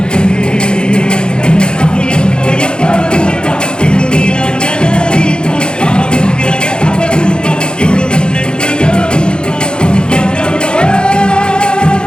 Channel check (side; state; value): right; late; 0.049 ms